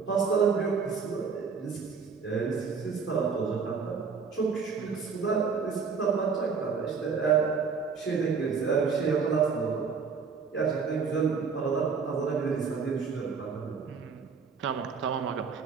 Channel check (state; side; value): quieter; left; 5.6 dB